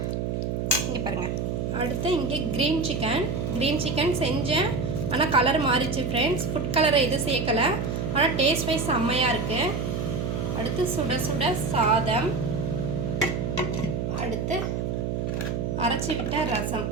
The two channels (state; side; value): noise; right; hum, 1 dB below the sound